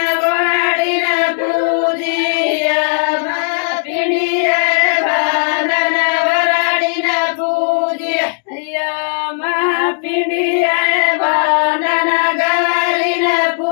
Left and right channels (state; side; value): silent; right; 70 dB below the other